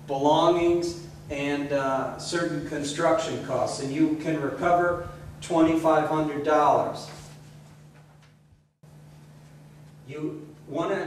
belongings, and certain construction costs, and you can recover $2,500.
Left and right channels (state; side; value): identical; both; correlation 1.00